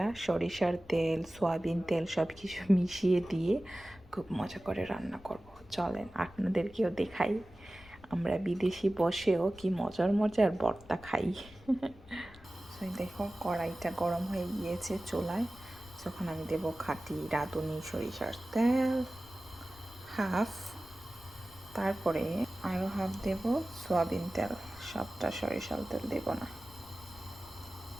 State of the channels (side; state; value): left; noise; rumble, 21 dB below the sound